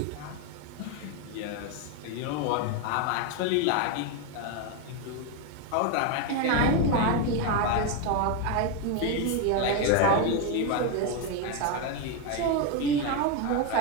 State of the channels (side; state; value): both; different; correlation 0.02